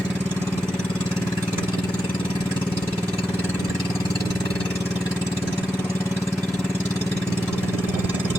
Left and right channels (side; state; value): both; normal; correlation 0.85